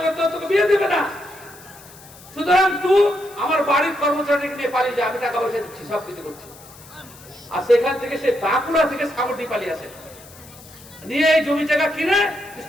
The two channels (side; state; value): left; noise; hiss, 21 dB below the sound